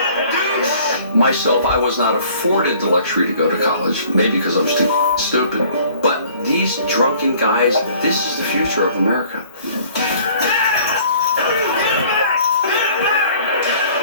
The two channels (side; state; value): both; inverted; correlation -0.53